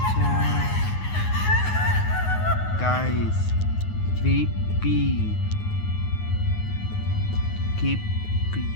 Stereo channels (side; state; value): right; late; 9.5 ms